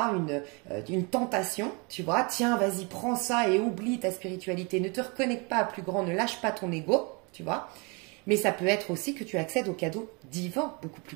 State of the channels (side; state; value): left; quieter; 30.9 dB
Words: une tentation, tu vois. Tiens, vas-y, prends ça et oublie ta spiritualité. Ne te reconnecte pas à plus grand, ne lâche pas ton ego, tu vois. Mais ça peut être aussi que tu accèdes aux cadeaux divins, beaucoup